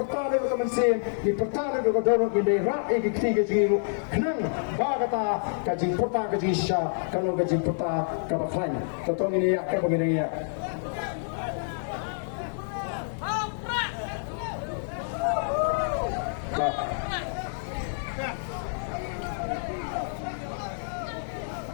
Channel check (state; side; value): silent; right; 59 dB below the other